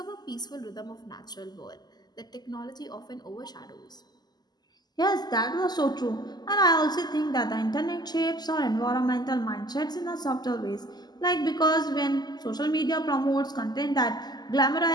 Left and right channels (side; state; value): right; late; 0.20 ms